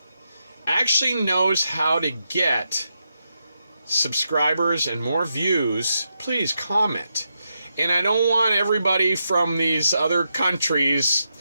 actually knows how to get subscribers and more views, please comment. And I don't want everybody from these other countries,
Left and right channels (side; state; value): both; inverted; correlation -0.84